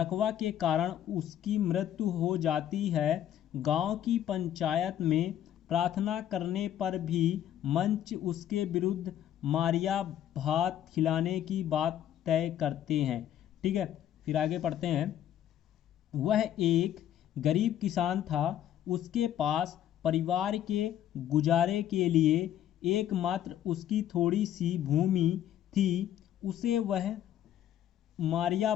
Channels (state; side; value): quieter; right; 11.0 dB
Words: के कारण उसकी मृत्यु हो जाती है। गांव की पंचायत में प्रार्थना करने पर भी मंच उसके विरुद्ध मारिया भात खिलाने की बात तय करते हैं, ठीक है। फिर आगे पढ़ते हैं, वह एक गरीब किसान था, उसके पास परिवार के गुजारे के लिए एकमात्र उसकी थोड़ी सी भूमि थी, उसे वह मारिया